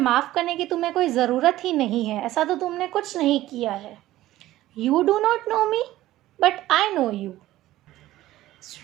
करने की तुम्हें कोई ज़रूरत ही नहीं है, ऐसा तो तुमने कुछ नहीं किया है। You do not know me, but I know you.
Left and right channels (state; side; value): quieter; left; 15.4 dB